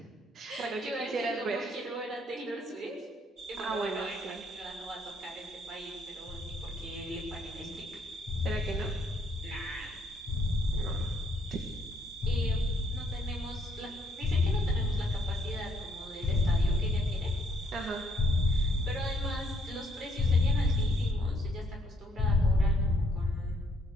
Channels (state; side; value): normal; both; correlation 0.68